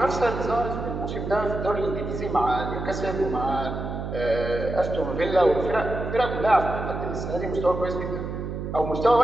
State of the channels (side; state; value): right; noise; hum, 5 dB below the sound